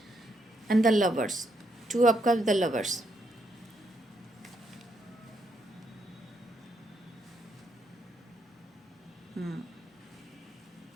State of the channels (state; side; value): normal; both; correlation 0.77